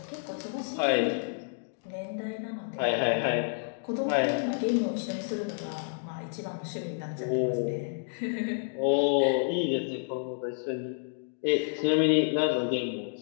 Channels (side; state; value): right; silent; digital silence